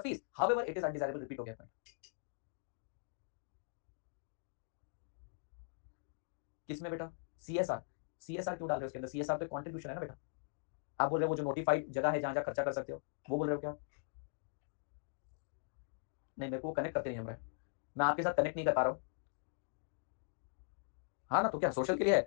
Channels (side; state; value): right; silent; digital silence